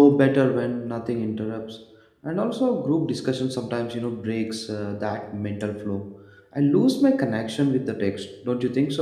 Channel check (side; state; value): both; identical; correlation 1.00